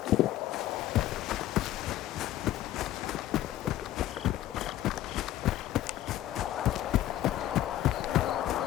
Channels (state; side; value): quieter; right; 13.6 dB